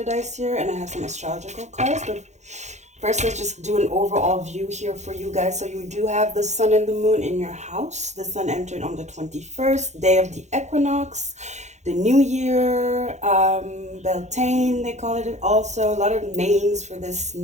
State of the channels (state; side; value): late; left; 0.33 ms